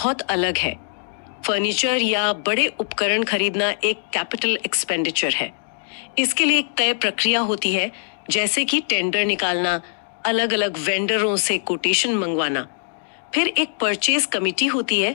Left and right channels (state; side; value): silent; right; digital silence